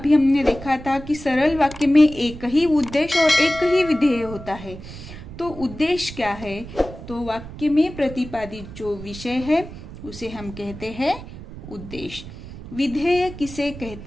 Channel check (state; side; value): noise; right; rumble, 13 dB below the sound